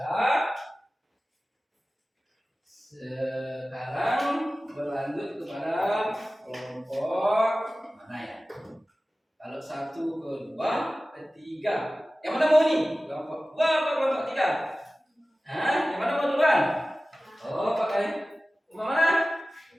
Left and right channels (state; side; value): normal; both; correlation 0.97